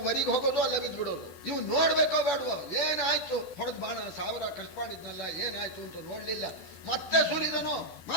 ವರಿಗೆ ಹೋಗೋದು, ಅಲ್ಲ ಬಿದ್ದು ಬಿಡೋದು. ಇವು ನೋಡ್ಬೇಕೋ ಬೇಡವೋ, ಏನಾಯ್ತು ಹೊಡೆದ್ ಬಾಣ, 1000 ಖರ್ಚು ಮಾಡಿದ್ನಲ್ಲ ಏನಾಯ್ತು ಅಂತ ನೋಡ್ಲಿಲ್ಲ. ಮತ್ತೆ ಸುರಿದನು,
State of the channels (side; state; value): right; late; 12 ms